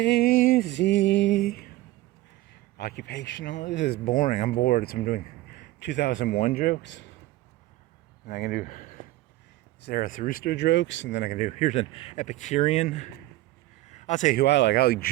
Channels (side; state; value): left; quieter; 17.0 dB